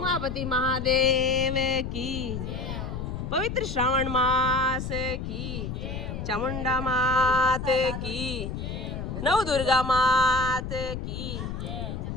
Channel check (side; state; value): left; noise; rumble, 5 dB below the sound